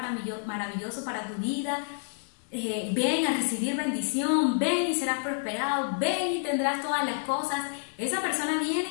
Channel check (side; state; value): right; silent; digital silence